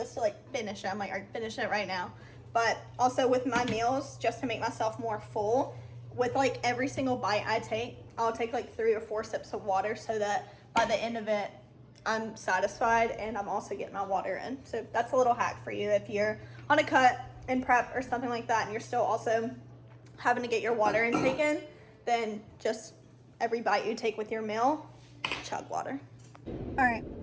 to like finish it. I'm like, all right, finish it right now. But also with my meals, just to make myself more full, with like every single bite I take, I'll take like 3 or 4 sips of water so that by the end of it, I'm satisfied and I'm also getting my water in. So that's a little hack for you if you're on a cut in prep or something like that and you're still also having to get your water intake in, then just every bite you take with your meal, chug water. All right,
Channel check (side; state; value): both; identical; correlation 1.00